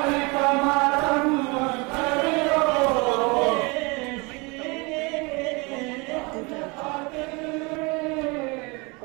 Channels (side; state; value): left; quieter; 28.0 dB